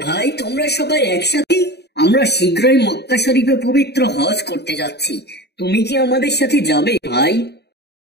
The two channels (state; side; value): late; right; 0.48 ms